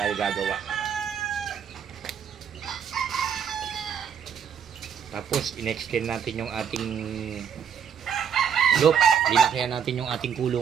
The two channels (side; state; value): left; quieter; 7.7 dB